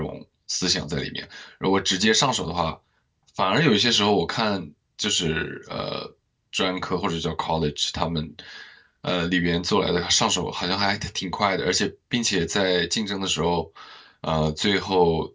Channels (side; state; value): both; identical; correlation 1.00